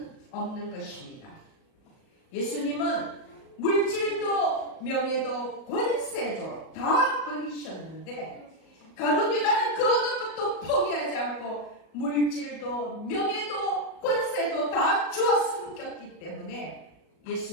없는 것입니다. 예수님은 물질도 명예도 권세도 다 버리셨는데 가룟 유다는 그 어느 것도 포기하지 않고 물질도 명예도 권세도 다 주어 섬겼기 때문에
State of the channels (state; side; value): late; right; 37 ms